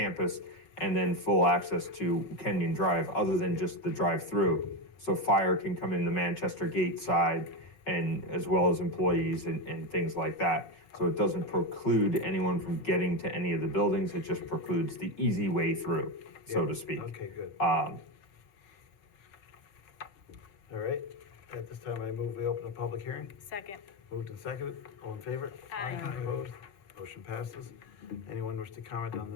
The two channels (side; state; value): right; late; 5.4 ms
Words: and then full access to Kenyon Drive, other than just the drive-through. So fire can come in the Manchester Gate side, and as well as employees and things like that. So it doesn't preclude anyone from getting to any of the buildings, it just precludes the easy way through, so to speak. Okay, good. All right, at this time, I move we open a public hearing. Second. Moved and seconded, all in favor? Aye. Opposed? Motion passes. Anyone wish to comment on the